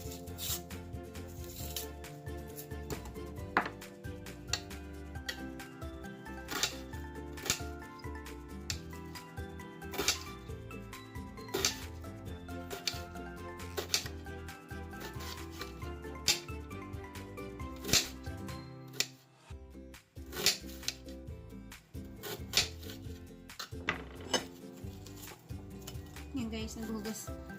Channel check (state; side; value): identical; both; correlation 1.00